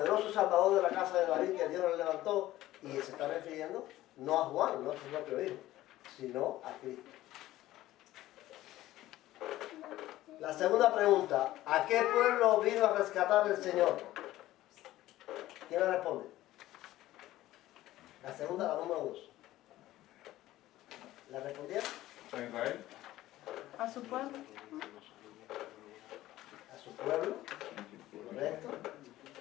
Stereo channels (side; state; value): right; quieter; 15.4 dB